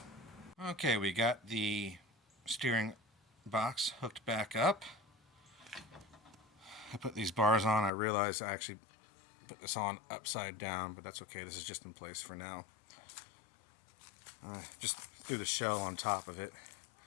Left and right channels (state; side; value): drops out; right; at 7.9 s